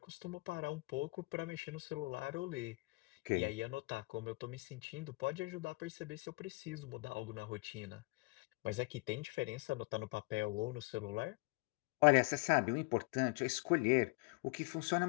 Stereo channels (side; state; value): right; quieter; 26.2 dB